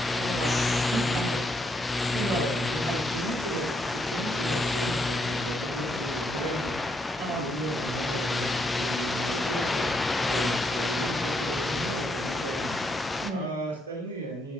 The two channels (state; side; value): normal; both; correlation 0.76